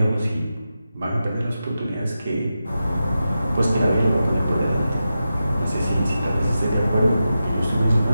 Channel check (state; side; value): inverted; both; correlation -0.91